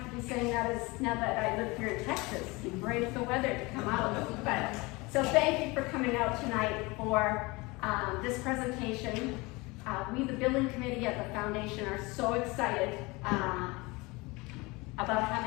to be saying that now that I live here in Texas. You brave the weather to come out. But so thank you for coming out tonight for this presentation. We, the building committee at the foundation, are so excited about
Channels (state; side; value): quieter; right; 24.4 dB